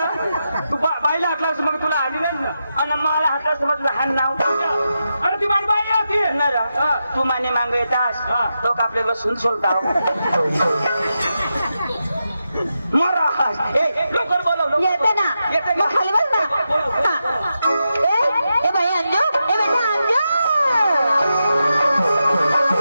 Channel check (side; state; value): both; inverted; correlation -0.88